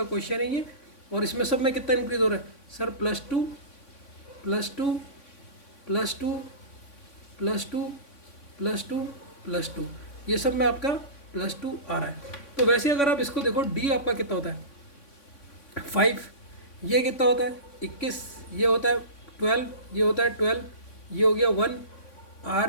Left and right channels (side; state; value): right; late; 3.5 ms